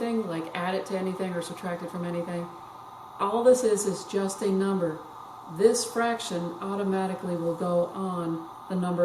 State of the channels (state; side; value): identical; both; correlation 1.00